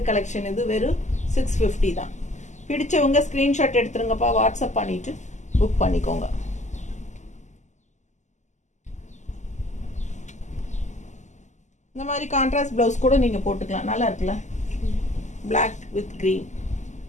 கலெக்ஷன் இது. வெறும் 650 தான். பிடிச்சவங்க ஸ்க்ரீன்ஷாட் எடுத்துருங்கப்பா, வாட்ஸ்அப் பண்ணிட்டு புக் பண்ணிக்கோங்க. இந்த மாதிரி கான்ட்ராஸ்ட் ப்ளவுஸ் கூட நீங்கள் போட்டுக்கலாம். நல்லா இருக்குல்ல? Black with green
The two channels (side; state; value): right; late; 0.34 ms